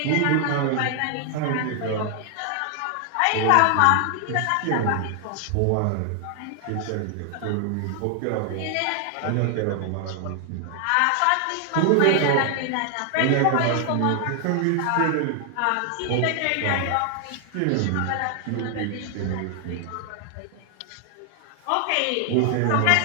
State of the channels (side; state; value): both; different; correlation 0.00